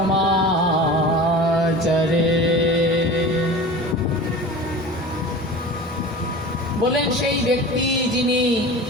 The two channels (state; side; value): normal; both; correlation 0.36